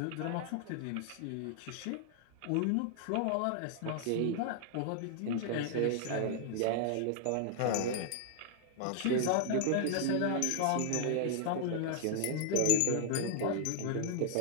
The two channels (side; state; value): both; different; correlation 0.00